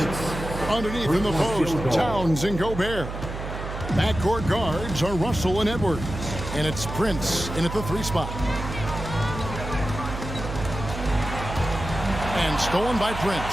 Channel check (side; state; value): right; noise; hum, 7 dB below the sound